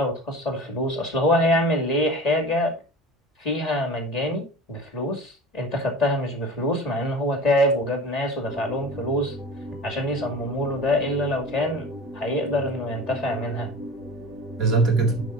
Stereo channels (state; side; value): normal; both; correlation 0.36